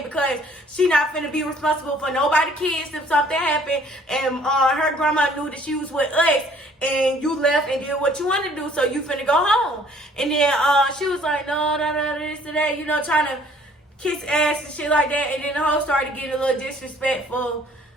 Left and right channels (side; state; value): both; normal; correlation 0.58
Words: because she not finna be responsible for nobody kids if something happened, and her grandma knew that she was with us, and you left and did what you wanted to do, so you finna go home. And then she was like, no, this and that, trying to kiss ass and shit like that, and then the hoe started getting a little disrespectful.